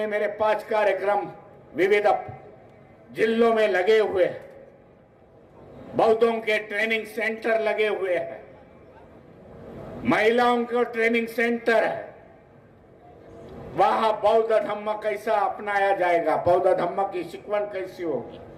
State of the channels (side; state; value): both; identical; correlation 1.00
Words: मेरे 5 कार्यक्रम विविध जिलों में लगे हुए हैं। बौद्धों के ट्रेनिंग सेंटर लगे हुए हैं, महिलाओं को ट्रेनिंग सेंटर है। वहां बौद्ध धम्म कैसा अपनाया जाएगा, बौद्ध धम्म की शिकवण कैसी होगी,